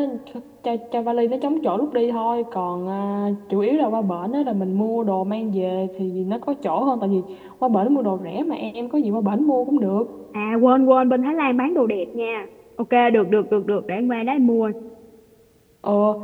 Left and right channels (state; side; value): identical; both; correlation 1.00